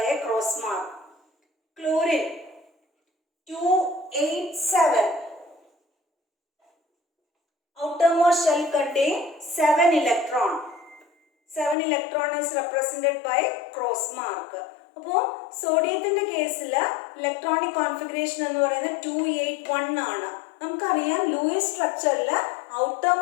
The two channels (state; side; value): drops out; right; at 11.8 s